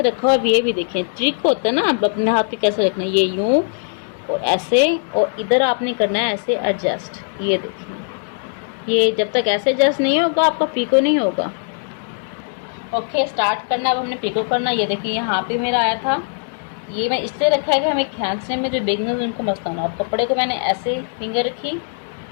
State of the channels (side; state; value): right; silent; digital silence